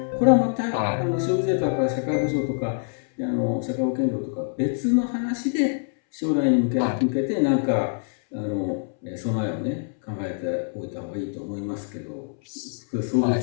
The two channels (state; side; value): silent; right; 62 dB below the other